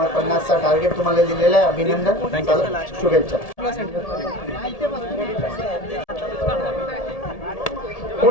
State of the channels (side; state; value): right; late; 1.8 ms